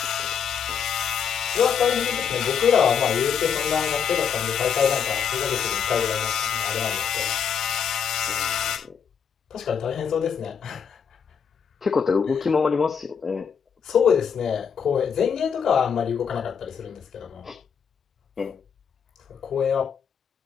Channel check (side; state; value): right; quieter; 7.2 dB